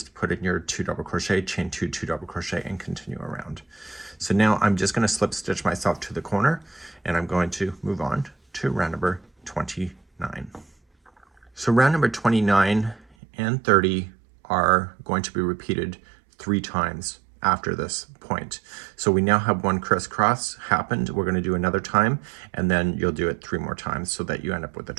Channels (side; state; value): left; drops out; at 13.1 s